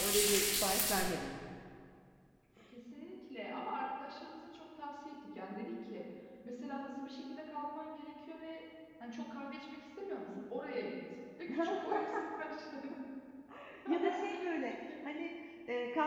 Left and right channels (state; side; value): identical; both; correlation 1.00